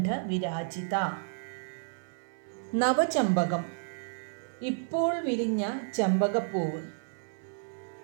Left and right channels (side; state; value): left; silent; 57 dB below the other